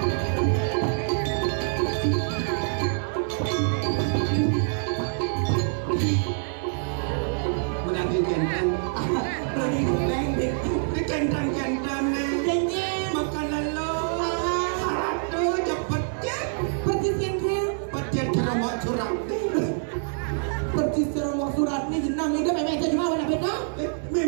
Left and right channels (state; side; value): silent; left; digital silence